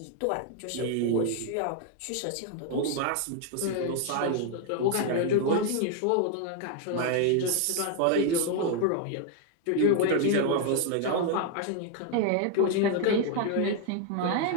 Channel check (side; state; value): both; different; correlation 0.00